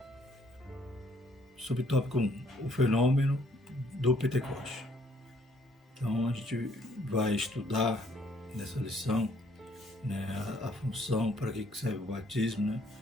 Subtópico 1, o fenômeno do Pentecoste. Então a gente vai estudar nessa lição, né, a função, para que serve o batismo, né,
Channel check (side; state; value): both; normal; correlation 0.65